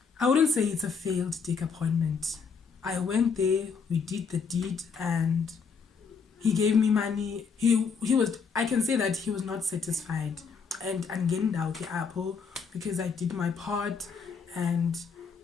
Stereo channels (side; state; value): right; quieter; 5.6 dB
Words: I wouldn't say it's a failed dick appointment. I went there, we did the deed, and he gave me money. He was, I can say that he was not satisfied. And angendawo ke apho, because I did my part and